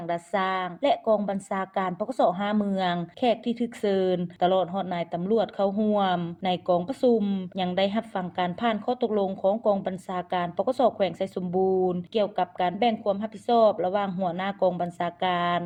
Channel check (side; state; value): both; identical; correlation 1.00